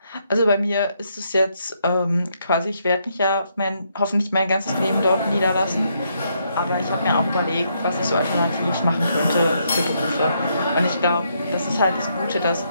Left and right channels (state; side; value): inverted; both; correlation -0.75